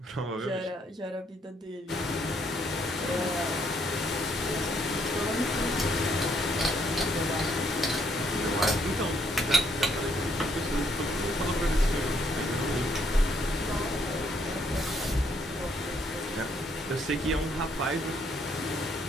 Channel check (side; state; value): both; normal; correlation 0.70